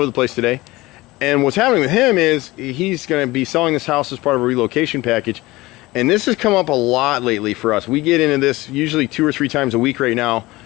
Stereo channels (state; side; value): quieter; right; 19.9 dB